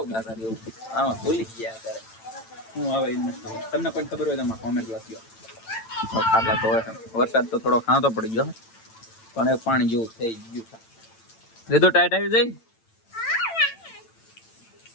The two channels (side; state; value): right; late; 8.9 ms